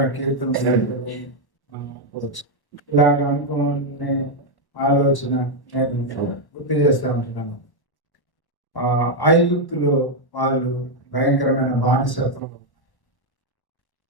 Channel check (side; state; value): right; late; 1.1 ms